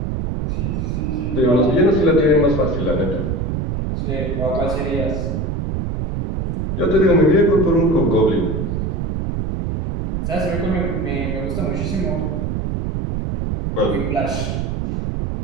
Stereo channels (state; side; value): noise; right; rumble, 2 dB below the sound